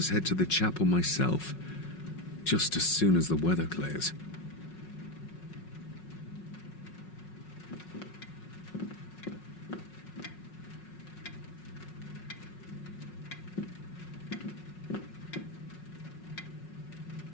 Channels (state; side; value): late; right; 5.4 ms